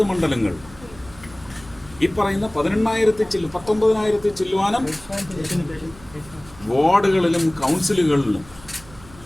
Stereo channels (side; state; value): right; noise; hum, 21 dB below the sound